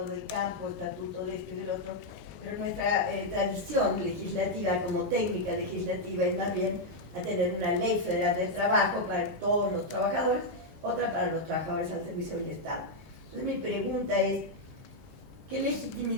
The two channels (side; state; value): both; normal; correlation -0.01